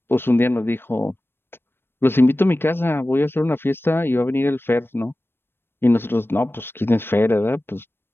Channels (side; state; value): right; late; 0.10 ms